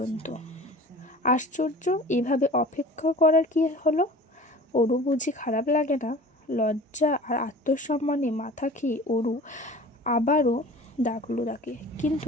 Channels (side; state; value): both; normal; correlation 0.41